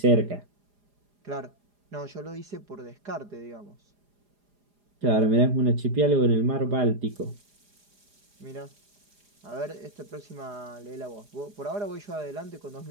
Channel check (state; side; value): late; left; 4.9 ms